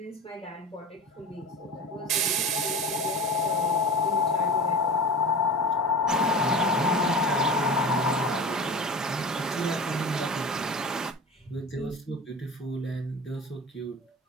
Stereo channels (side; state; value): both; normal; correlation 0.32